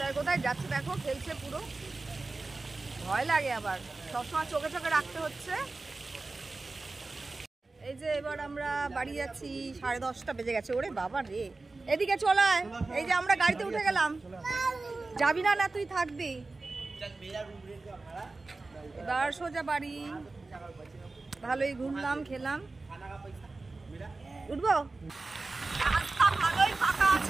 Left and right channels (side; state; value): left; quieter; 3.5 dB